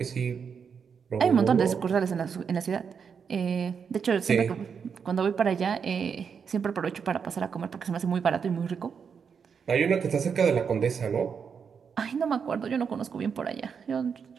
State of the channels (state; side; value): quieter; left; 6.5 dB